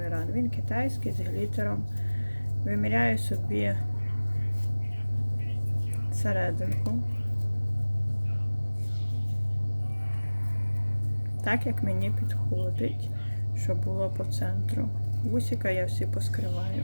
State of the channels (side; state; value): both; inverted; correlation -1.00